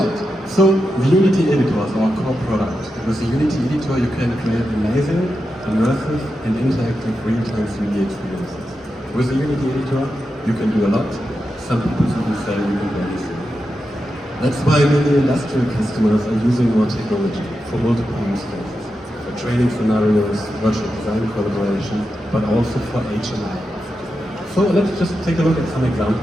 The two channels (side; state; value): both; normal; correlation 0.89